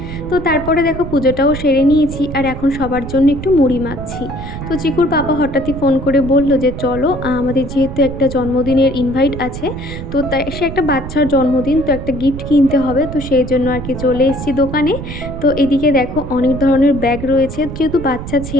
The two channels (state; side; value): noise; right; rumble, 9 dB below the sound